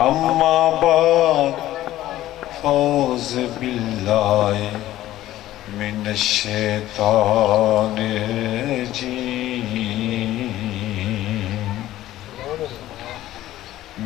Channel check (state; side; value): quieter; right; 14.5 dB